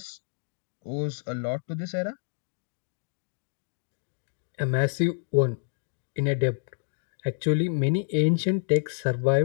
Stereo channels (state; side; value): silent; right; digital silence